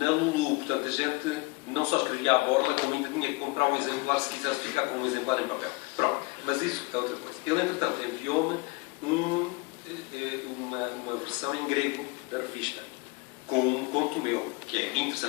Lulu, portanto a gente não só escrevia à borla, como ainda tinha que comprar um exemplar se quisesse ficar com um exemplar em papel. Pronto, mas isso é outra coisa. Ele, entretanto, enviou-me uma versão em grego da revista, com um conto meu, que é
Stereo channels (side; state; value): right; quieter; 25.8 dB